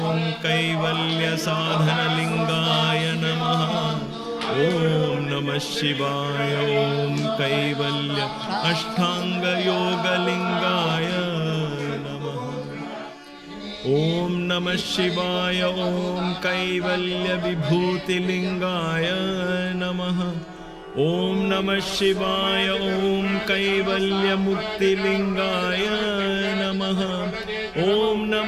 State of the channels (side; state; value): both; identical; correlation 1.00